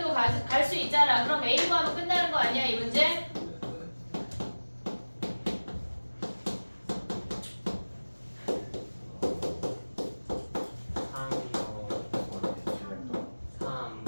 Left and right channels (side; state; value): both; inverted; correlation -1.00